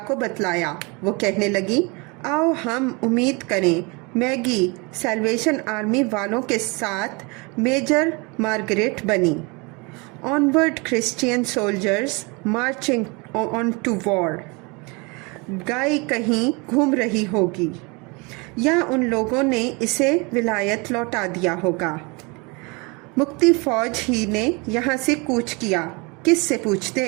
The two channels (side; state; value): left; quieter; 28.7 dB